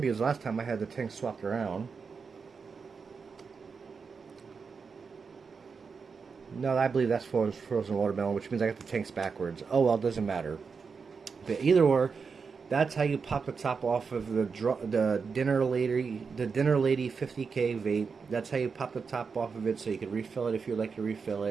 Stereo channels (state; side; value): quieter; left; 5.4 dB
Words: last time I had the tank swapped around. No, I believe that's frozen watermelon, which means I got the tanks backwards. Oh well, it doesn't matter. But either or, that's how you pop the top off of the Dinner Lady 50K Vape. That's how you pop the top off of it, so you can refill it if you'd like to refill